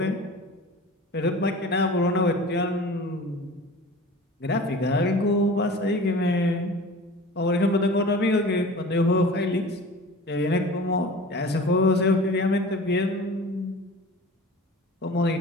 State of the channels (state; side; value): normal; both; correlation 0.39